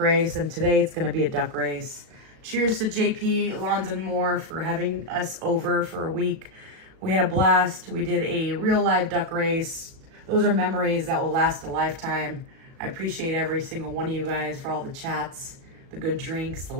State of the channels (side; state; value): left; late; 37 ms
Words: and today it's going to be a duck race. Cheers to JP, Lons, and Moore for having us over for a week. We had a blast. We did a real live duck race. Those are memories that will last a lifetime. I appreciate every single one of you guys for all the chats, The good drinks, the